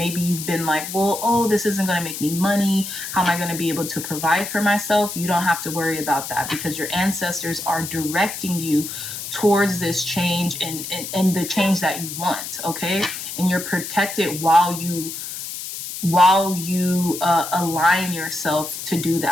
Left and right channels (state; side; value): noise; left; hiss, 8 dB below the sound